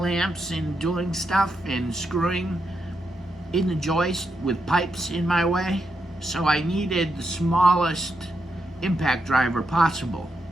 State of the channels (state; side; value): normal; both; correlation 0.83